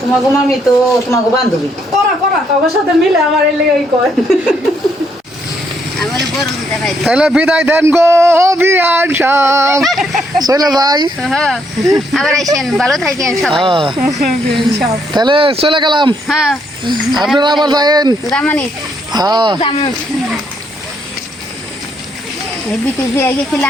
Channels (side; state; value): both; normal; correlation 0.73